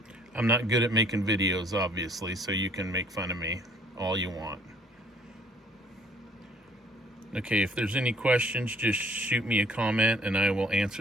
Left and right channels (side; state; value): both; normal; correlation 0.59